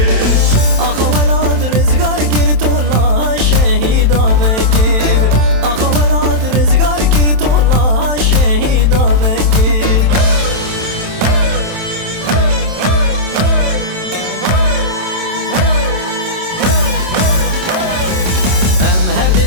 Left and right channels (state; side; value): late; left; 27 ms